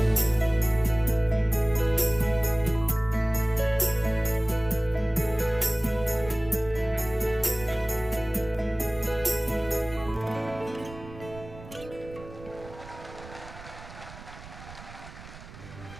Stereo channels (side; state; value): right; noise; rumble, 16 dB below the sound